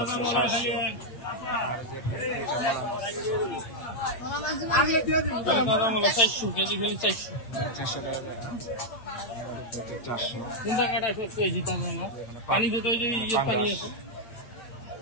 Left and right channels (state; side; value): late; right; 8.5 ms